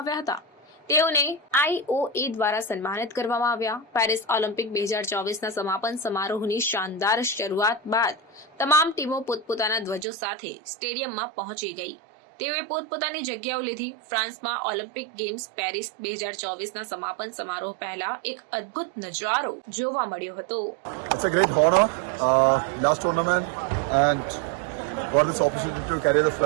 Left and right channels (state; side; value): drops out; left; at 10.1 s